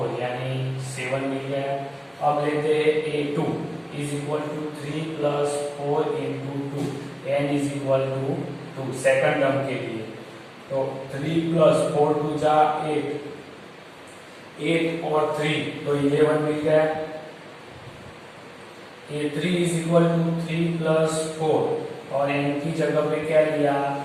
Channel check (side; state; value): both; identical; correlation 1.00